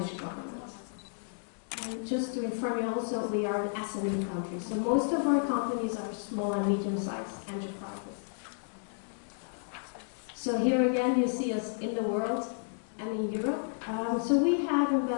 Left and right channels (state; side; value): silent; right; digital silence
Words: government. And just to inform you also, we are an SME country, so most of our companies are small and medium-sized enterprises. So here again, you see us in the world and in Europe. So we have in